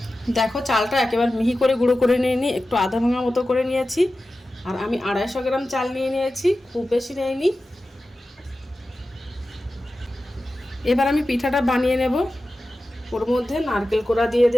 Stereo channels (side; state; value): both; normal; correlation 0.94